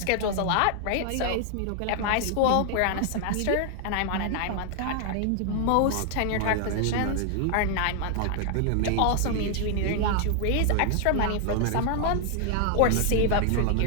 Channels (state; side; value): different; both; correlation 0.00